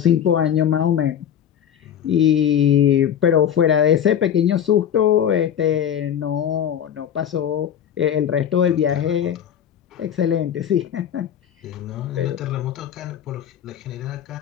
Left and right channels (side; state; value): right; quieter; 9.3 dB